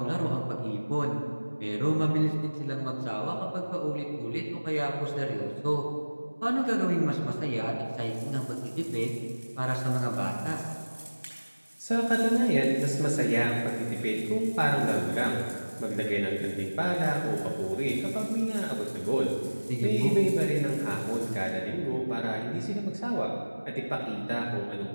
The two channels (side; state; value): both; inverted; correlation -1.00